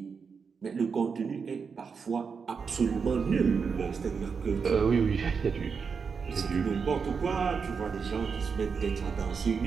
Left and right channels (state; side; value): quieter; left; 5.7 dB